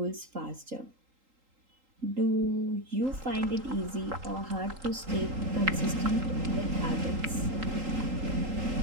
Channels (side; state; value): left; late; 3.8 ms